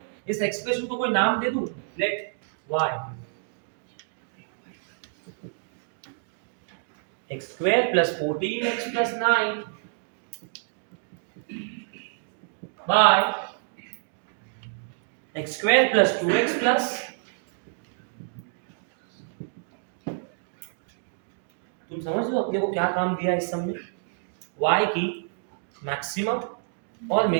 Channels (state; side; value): silent; left; digital silence